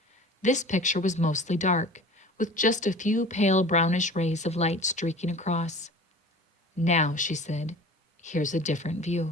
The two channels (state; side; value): normal; both; correlation 0.41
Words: This picture was mostly dark, with just a few pale brownish rays of light streaking across. "Now," she said, "here's a different